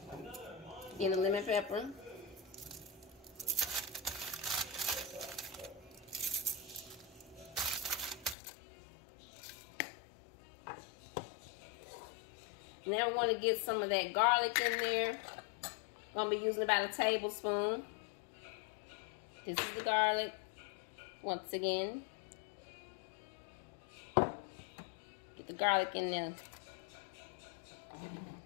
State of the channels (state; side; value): drops out; right; at 8.3 s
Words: and the lemon pepper. Now we want to get some of that garlic in there. I'm going to be using about a tablespoon. This is the garlic. Once again, get the garlic in there.